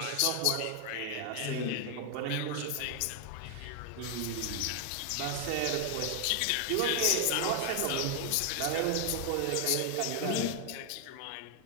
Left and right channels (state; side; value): different; both; correlation 0.00